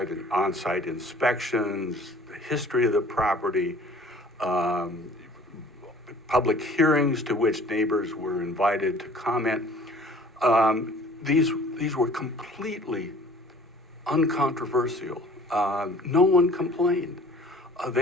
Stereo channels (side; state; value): both; normal; correlation 0.49